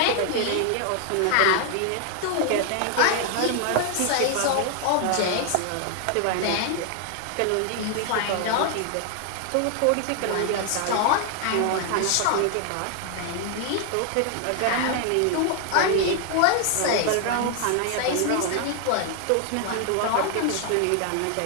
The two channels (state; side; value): different; both; correlation 0.00